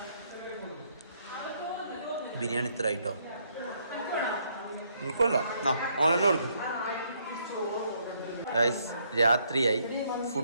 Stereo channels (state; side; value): inverted; both; correlation -0.70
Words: ബിരിയാണി ഇത്ര ആയിട്ടോ? നിൽക്കുമല്ല, ഓനെന്നെ കൊടുക്കും. ഗൈസ്, രാത്രിയായി,